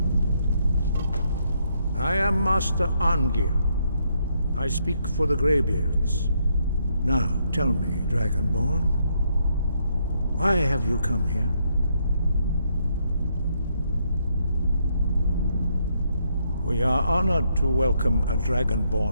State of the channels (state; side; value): inverted; both; correlation -0.75